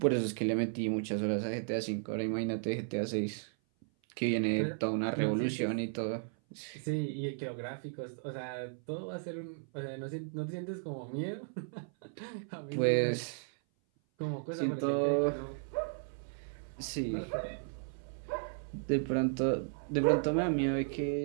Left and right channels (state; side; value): silent; left; 54 dB below the other